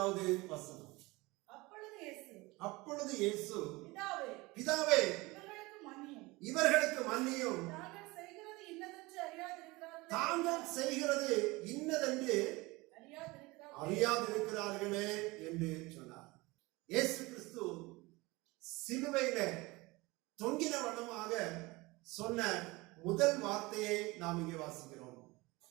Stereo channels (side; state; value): left; quieter; 22.7 dB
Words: வசனம். அப்பொழுது இயேசு பிதாவே இவர்களுக்கு மன்னியும், தாங்கள் செய்கிறது இன்னதென்று அறியாதிருக்கிறார்களே என்று சொன்னார். இயேசு கிறிஸ்து சிலுவையில தொங்கின வண்ணமாக சொன்ன முதல் வார்த்தையை நாம் இங்கே வாசிக்கிறோம்.